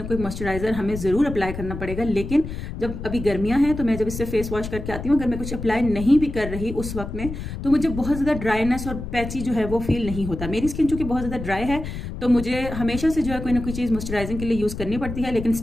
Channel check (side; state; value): left; noise; rumble, 8 dB below the sound